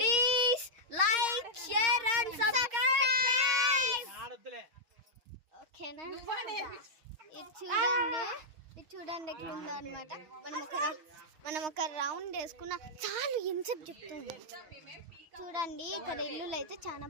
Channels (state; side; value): late; left; 6.3 ms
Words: like share and subscribe. ఓకేనా? ఇది చూడండి ఎట్లా ఉందో అనమాట. మనం ఒక రౌండ్ వేసుకున్న చాలు. ఇన్సెప్ట్ చెప్తుంది. చూడండి ఇక్కడ ఇల్లులు అయితే చాలా